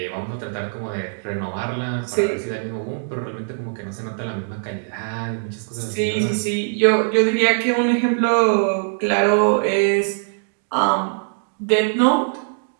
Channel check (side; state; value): left; silent; digital silence